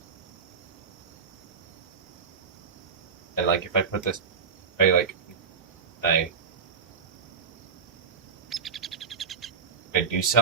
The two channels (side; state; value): left; quieter; 5.9 dB